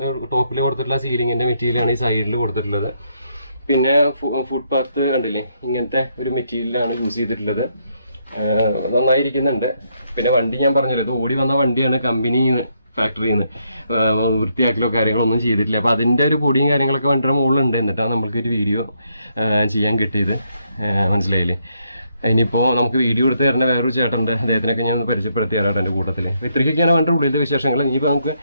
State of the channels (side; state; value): both; inverted; correlation -0.75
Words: ടോപ്പിൽ കൊടുത്തിട്ടുള്ള സീലിങ്ങിൻ്റെ മെറ്റീരിയലാണ് ഈ സൈഡിൽ കൊടുത്തിട്ടുള്ളത്. പിന്നെ ഫുട്പാത്ത് കണ്ടില്ലേ, ഇങ്ങനത്തെ ഒരു മെറ്റീരിയലാണ് യൂസ് ചെയ്തിട്ടുള്ളത്. നന്നായിരിക്കുന്നുണ്ട്. പിന്നെ വണ്ടി ഞാൻ പറഞ്ഞല്ലോ, ഇത് ഓടി വന്ന വണ്ടിയാണ്, കമ്പനിയിൽ നിന്ന് ഫാക്ടറിയിൽ നിന്ന് വൃത്തിയാക്കലോ കാര്യങ്ങളോ ഒന്നും ചെയ്തിട്ടില്ല. അപ്പോൾ അതിൻ്റെ ഒരു പൊടിയും കാര്യങ്ങളൊക്കെ വണ്ടിയുടെ മുകളിലുണ്ട്. എന്നിട്ടാണ് നമ്മൾക്കൊരു വീഡിയോ ചെയ്യാൻ കിട്ടിയത്, മനസ്സിലായില്ലേ. ഇനിയിപ്പോൾ നമുക്ക് വീഡിയോ എടുത്ത് തരുന്ന വേറൊരു ചേട്ടനുണ്ട്, അദ്ദേഹത്തിനൊക്കെ ഞാൻ പരിചയപ്പെടുത്തി തരാം എൻ്റെ കൂട്ടത്തിൽ. ഇത്രയ്ക്കൊക്കെയാണ് വണ്ടിയുടെ ഉള്ളിലത്തെ വിശേഷങ്ങൾ. ഇനിയിപ്പോൾ നമുക്ക്